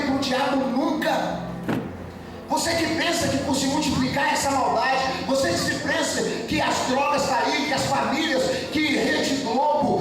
para o diabo nunca. Você que pensa que por se multiplicar essa maldade, você que se pensa que as drogas estão aí, que as famílias, que Rede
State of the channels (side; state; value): both; identical; correlation 1.00